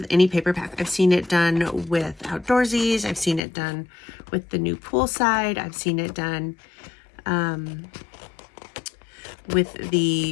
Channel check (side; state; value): right; drops out; at 3.4 s